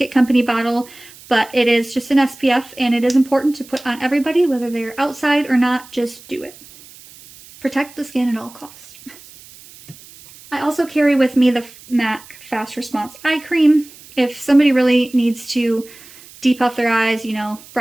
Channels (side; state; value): right; noise; hiss, 21 dB below the sound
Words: Company bottle, but it is just an SPF, and it is important to put on everybody, whether they're outside or not. Just do it. Protect the skin at all costs. I also carry with me the MAC Fast Response Eye Cream. If somebody really needs to depuff their eyes, you know,